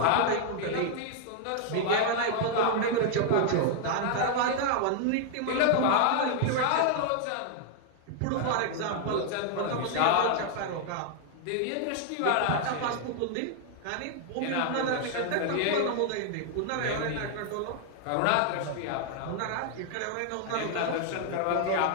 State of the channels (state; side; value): different; both; correlation 0.00